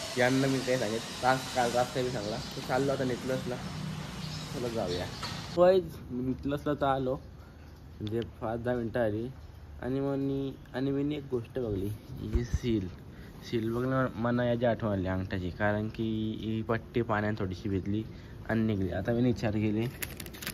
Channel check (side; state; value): both; identical; correlation 1.00